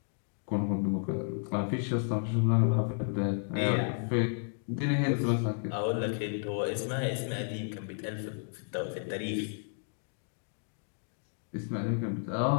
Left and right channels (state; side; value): silent; right; 56 dB below the other